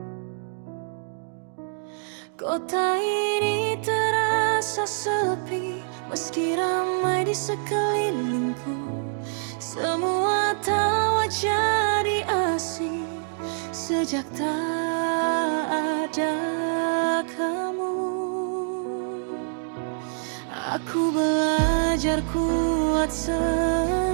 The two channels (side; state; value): left; silent; digital silence